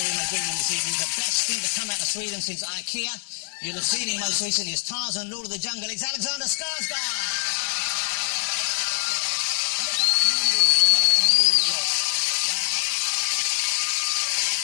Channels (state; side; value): silent; right; 62 dB below the other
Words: my green room this evening, the best thing to come out of Sweden since IKEA. You'll have seen him most recently as Tarzan, Lord of the Jungle. It's Alexander Skarsgård!